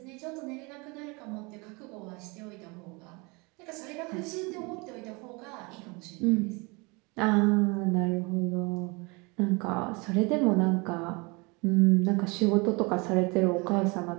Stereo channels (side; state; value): left; quieter; 28.1 dB